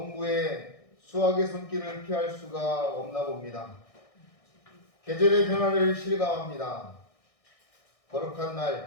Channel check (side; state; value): right; late; 1.6 ms